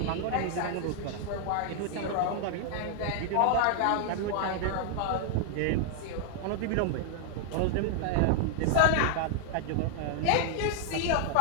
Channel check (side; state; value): both; different; correlation 0.00